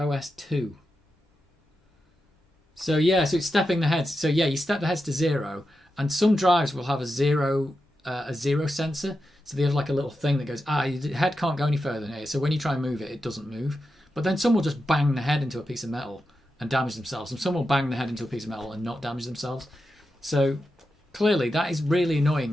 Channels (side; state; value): both; normal; correlation 0.89